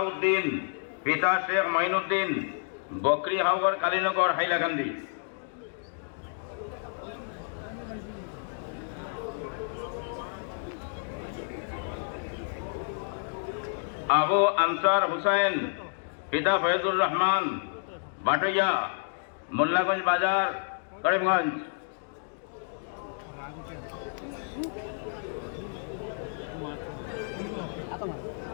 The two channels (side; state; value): right; silent; digital silence